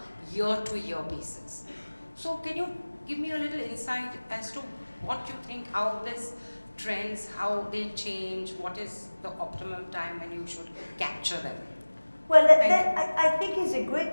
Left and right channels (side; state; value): both; inverted; correlation -1.00